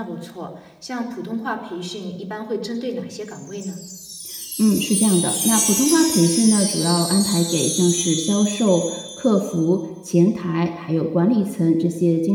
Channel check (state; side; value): identical; both; correlation 1.00